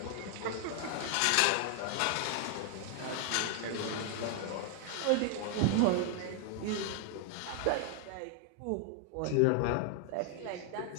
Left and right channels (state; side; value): different; both; correlation 0.00